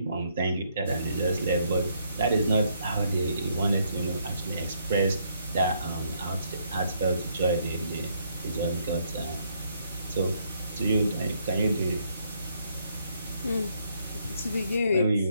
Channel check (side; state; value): both; inverted; correlation -0.71